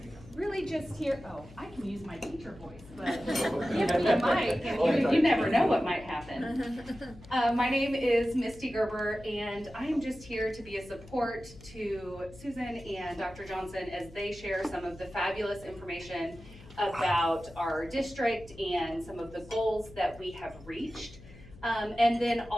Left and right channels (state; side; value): noise; left; hum, 19 dB below the sound